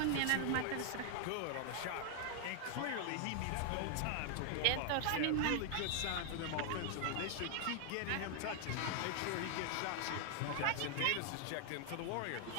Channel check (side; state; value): both; different; correlation 0.00